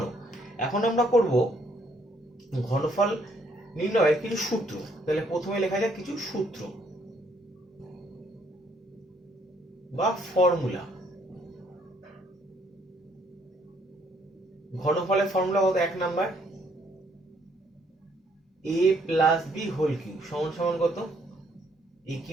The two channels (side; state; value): both; normal; correlation 0.67